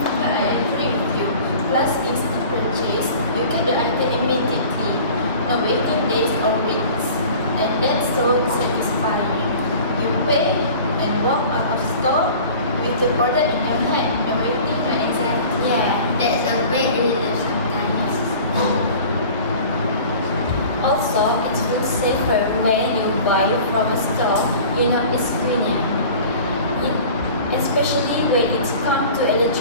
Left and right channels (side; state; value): both; inverted; correlation -0.43